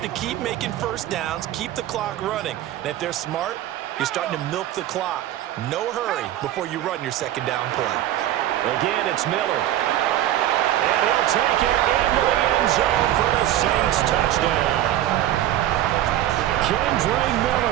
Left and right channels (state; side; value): quieter; left; 13.1 dB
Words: to keep making first downs, keep the clock running. And if they're smart, you're starting to milk the clock. No hurry before you run your second down play. Again, it's Miller. And he'll take it into the end zone for the Saints touchdown. Kendre